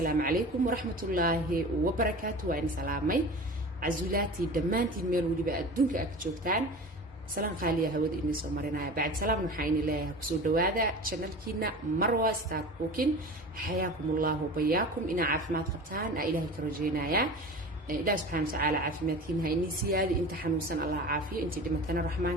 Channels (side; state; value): both; normal; correlation 0.35